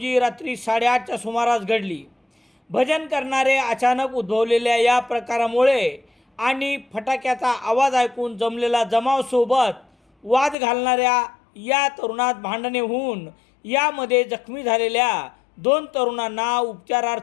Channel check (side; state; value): right; drops out; at 10.6 s